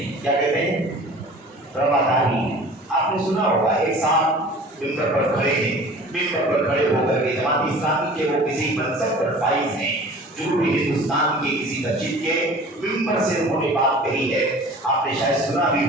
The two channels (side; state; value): both; normal; correlation 0.44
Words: کیا کہتے ہیں؟ رواداری. آپ نے سنا ہوگا ایک ساتھ ممبر پر کھڑے ہیں, ممبر پر کھڑے ہو کر کے جماعت اسلامی کے وہ کسی منصب پر فائز ہیں, جنوبی ہندوستان کے کسی مسجد کے ممبر سے انہوں نے بات کہی ہے. آپ نے شاید سنا بھی